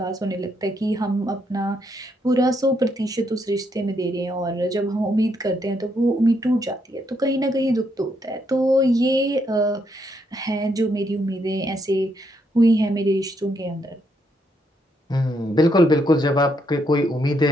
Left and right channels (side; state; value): both; normal; correlation 0.76